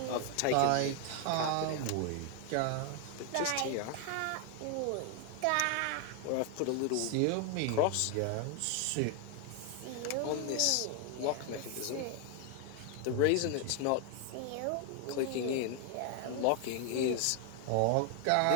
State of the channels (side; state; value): both; different; correlation 0.01